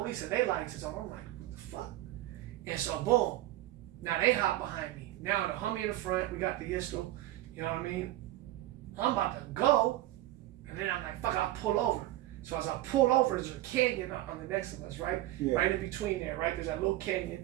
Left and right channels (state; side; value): quieter; left; 15.6 dB